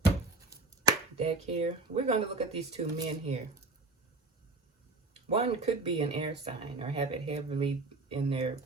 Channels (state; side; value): quieter; left; 3.4 dB